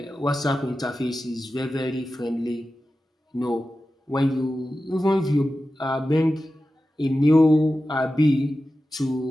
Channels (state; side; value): normal; both; correlation 0.93